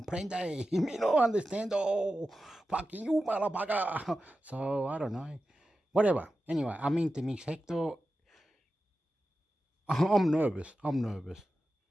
Me no understand. Oh, fucking you, motherfucker. So, I don't know. Whatever. Anyway, I'm into mi sector. I'm nervous.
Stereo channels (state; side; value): normal; both; correlation 0.92